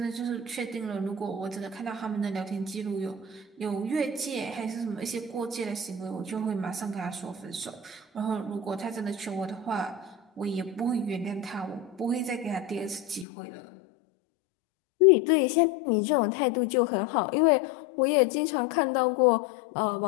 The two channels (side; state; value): right; drops out; at 13.2 s